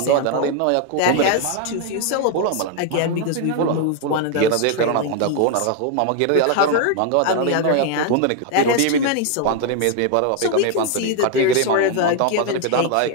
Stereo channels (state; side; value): different; both; correlation 0.01